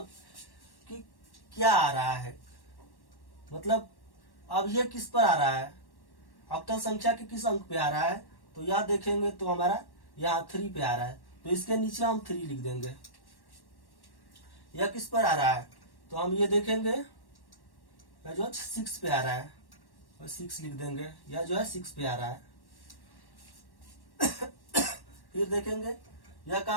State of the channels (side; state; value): right; late; 1.1 ms